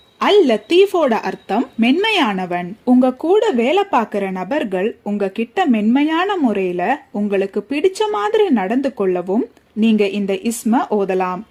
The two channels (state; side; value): identical; both; correlation 1.00